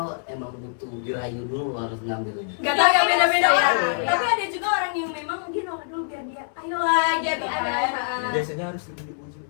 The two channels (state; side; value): silent; right; digital silence